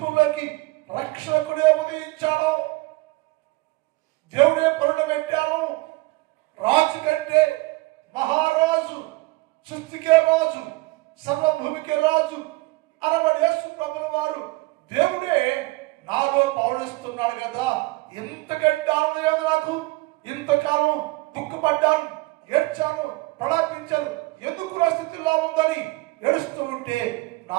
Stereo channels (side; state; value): left; quieter; 22.8 dB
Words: రక్షకుడే ఉదయించాడు. దేవుడే పండబెట్టాను. రాజు కంటే మహారాజు, సృష్టికే రాజు, సర్వభూమికే రాజు అనబడి యేసు ప్రభుల వారు దేవుడే నాలో పవనిస్తున్నాడు కదా. ఎంతకంటే ఆనందం నాకు. ఇంతకాలం దుఃఖపడ్డాను, ఏడ్చాను, ప్రలాపించాను, ఎందుకు నా స్థితిలో ఉందని ఏడుస్తూ ఉంటే,